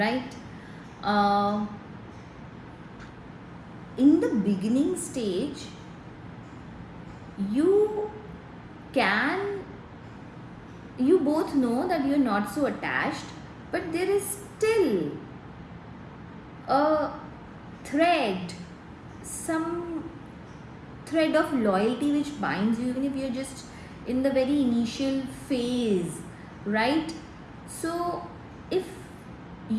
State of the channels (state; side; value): identical; both; correlation 1.00